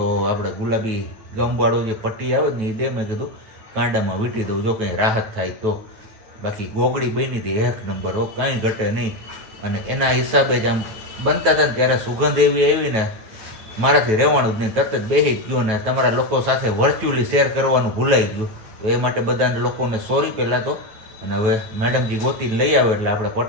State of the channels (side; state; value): left; late; 9.2 ms